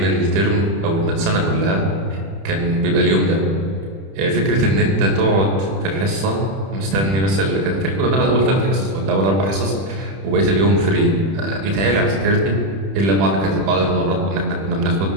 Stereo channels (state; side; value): late; left; 31 ms